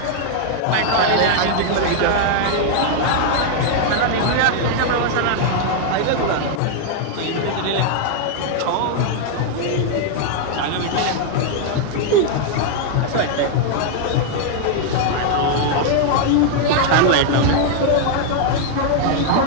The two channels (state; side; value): different; both; correlation 0.00